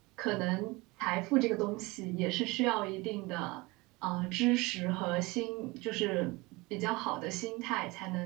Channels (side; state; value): left; quieter; 23.6 dB